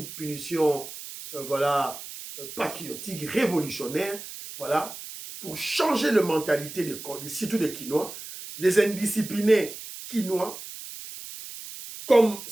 punition, voilà, patriotique, révolutionnaire, voilà, pour changer la mentalité surtout des Quinois, les indisciplinés Quinois, comme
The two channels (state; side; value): noise; right; hiss, 12 dB below the sound